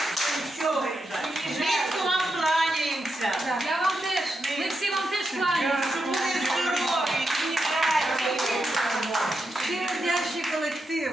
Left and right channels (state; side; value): normal; both; correlation 0.86